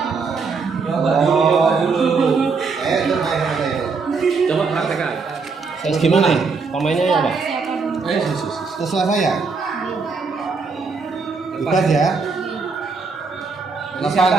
Coba dulu. Itu main apa itu? Coba praktekkan. Terus gimana? Pemainnya ya, Pak? Terserah saya. Bebas ya. 8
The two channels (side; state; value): left; quieter; 4.7 dB